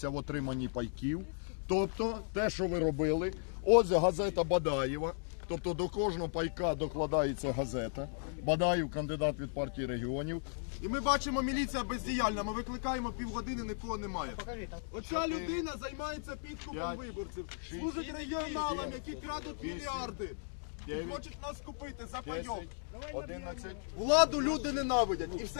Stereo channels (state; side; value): silent; right; digital silence